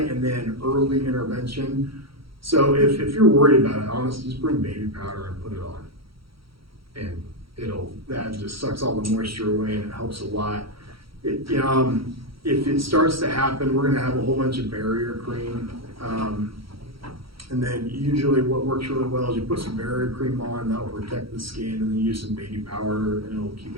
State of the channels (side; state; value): left; late; 0.75 ms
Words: and then early intervention. So if you're worried about it, honestly, just bring baby powder and put it on. And that just sucks all the moisture away and it helps a lot. If it starts to happen, we're gonna have a whole bunch of barrier cream. And then usually what works really well is you put some barrier cream on, that'll protect the skin, and then use some baby powder and it'll keep